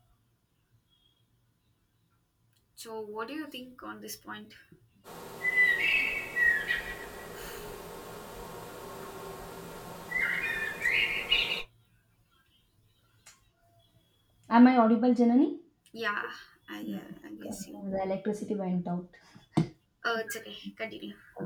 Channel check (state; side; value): identical; both; correlation 1.00